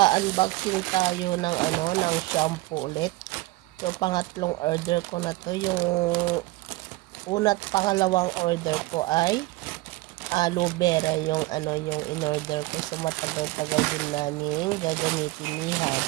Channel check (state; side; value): quieter; left; 20.2 dB